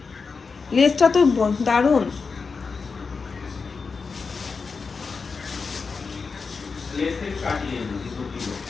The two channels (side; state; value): right; quieter; 4.9 dB